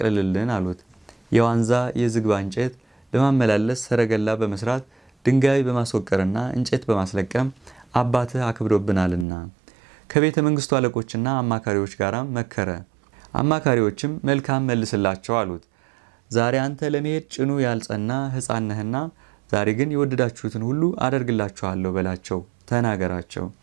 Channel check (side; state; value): left; drops out; at 9.2 s